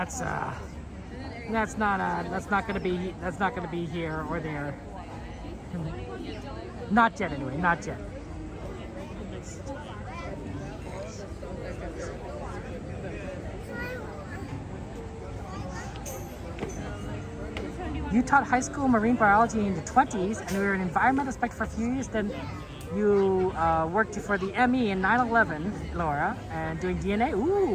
not gonna be here or there. Not yet, anyway. Not yet. You taught high school marine biology in the 20s, and you were an environmental inspector for a few years. Then you worked for the ME in 9/11, Laura, and doing DNA.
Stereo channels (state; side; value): identical; both; correlation 1.00